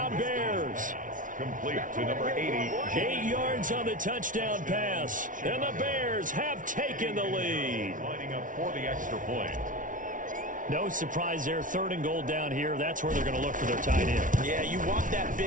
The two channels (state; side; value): late; left; 0.38 ms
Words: Bears. Complete to number 80. 8 yards on the touchdown pass. And the Bears have taken the lead. Lining up for the extra point. No surprise there. 3rd and goal down here. That's where they're going to look for their tight end. Yeah, you want that